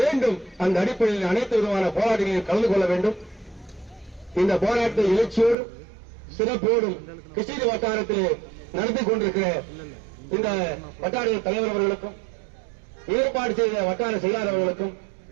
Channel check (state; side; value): drops out; left; at 5.6 s